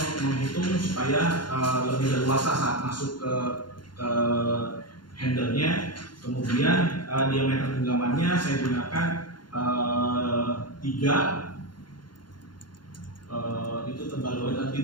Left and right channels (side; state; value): right; late; 0.71 ms